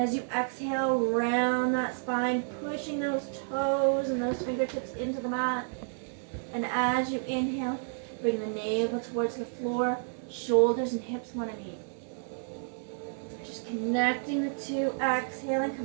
you exhale, round that spine, pushing those toes and those fingertips into the mat. And as you inhale, bring the navel towards the floor, shoulders and hips want to meet. Just connecting the two, exhaling,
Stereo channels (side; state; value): left; silent; digital silence